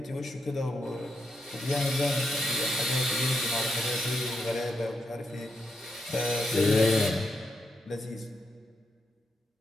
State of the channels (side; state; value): both; normal; correlation 0.83